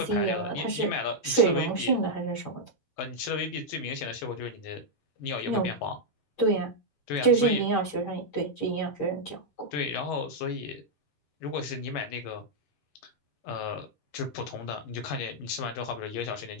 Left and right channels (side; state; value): right; late; 11 ms